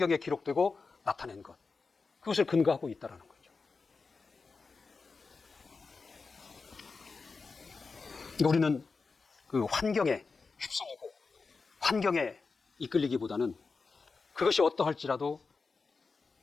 기록되고 나타낸 것. 그것을 근거하고 있다라는 거죠. 우리는 그 환경에 휩쓸리고 환경에 이끌리기보다는 그것이 어떠할지라도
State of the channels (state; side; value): quieter; right; 4.5 dB